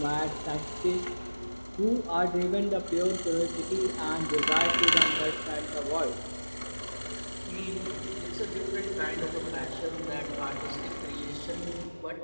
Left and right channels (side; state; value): both; inverted; correlation -1.00